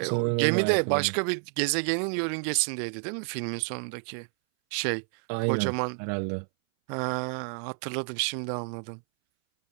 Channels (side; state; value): left; silent; 59 dB below the other